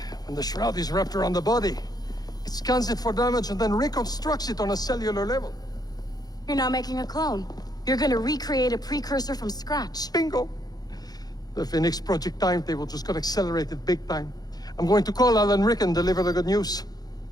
When the shroud is wrapped around the body, it scans it for damage and then reconstructs it on a cellular level. You're not making a clone. You're gonna recreate a precursor from scratch. Bingo! The Phoenix Project timetable just got accelerated big time. I'm going to call Alan Rick and deliver the good news.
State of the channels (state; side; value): late; right; 0.19 ms